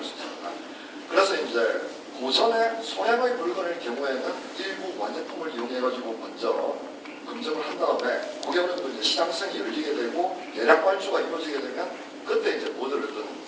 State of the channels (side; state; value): both; identical; correlation 1.00